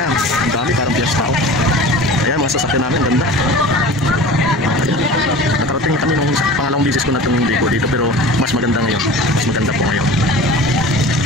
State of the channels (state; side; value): normal; both; correlation 0.38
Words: ang dami, parang piyesta tao. Ayan, mga sasakyan namin, ang ganda. Nakarating kami nung pangalawang bisis ko na itong ligo dito, pero mas maganda ngayon. Mas maganda po ngayon.